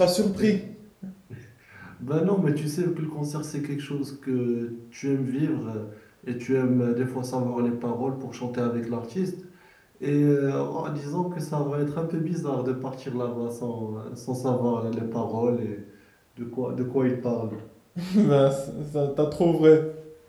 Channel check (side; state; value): both; identical; correlation 1.00